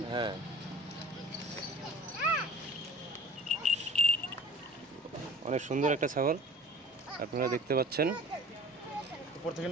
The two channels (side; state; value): both; normal; correlation 0.43